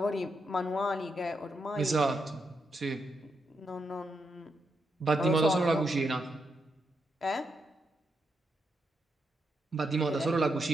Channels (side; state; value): both; normal; correlation 0.82